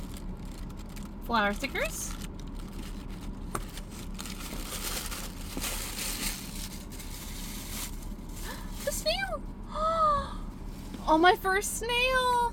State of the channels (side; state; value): both; identical; correlation 1.00